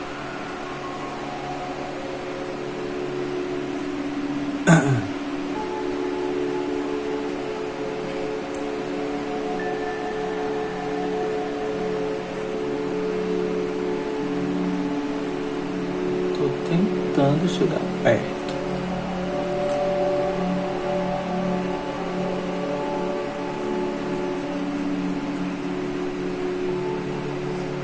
Tô tentando chegar perto.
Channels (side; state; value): both; identical; correlation 1.00